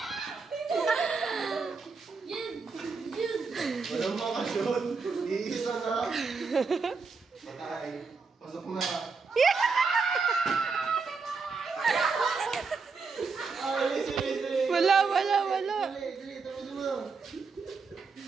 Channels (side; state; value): left; quieter; 4.7 dB